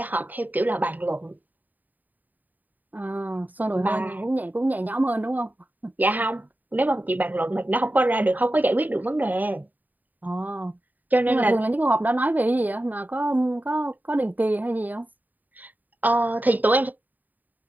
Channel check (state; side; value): late; left; 0.085 ms